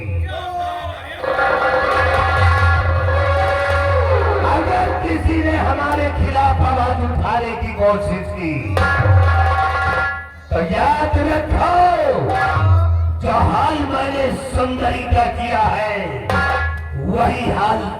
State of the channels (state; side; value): identical; both; correlation 1.00